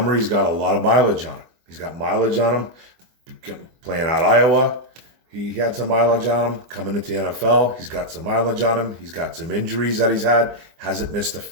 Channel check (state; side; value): late; left; 24 ms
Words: got a lot of mileage on him. He's got mileage on him playing at Iowa. He had some mileage on him coming into the NFL. He's got some mileage on him. He's got some injuries that he's had. Hasn't missed